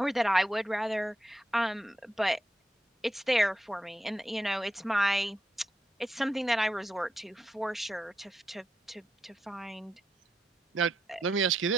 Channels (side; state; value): both; normal; correlation 0.84